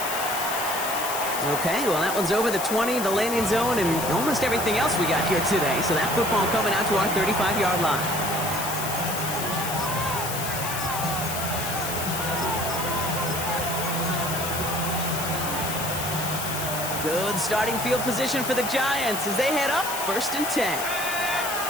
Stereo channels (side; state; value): left; noise; hiss, 5 dB below the sound